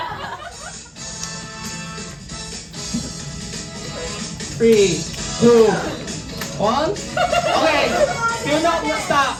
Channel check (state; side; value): identical; both; correlation 1.00